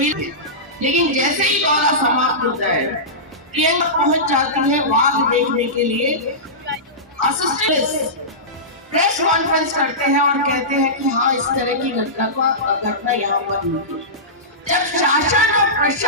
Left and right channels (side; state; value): both; normal; correlation -0.18